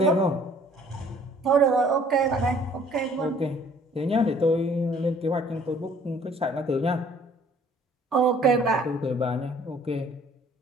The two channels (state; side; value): normal; both; correlation 0.56